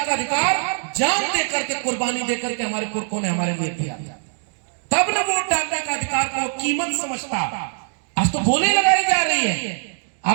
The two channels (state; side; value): silent; left; 62 dB below the other